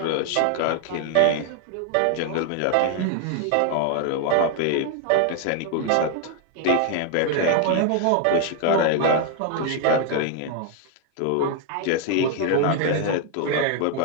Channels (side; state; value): both; different; correlation 0.00